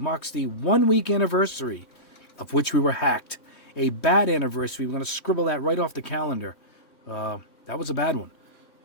the 1-week anniversary of which we were hacked. A bad anniversary. We're going to scribble that right off the calendar. That was a bad one.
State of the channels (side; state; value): right; late; 3.1 ms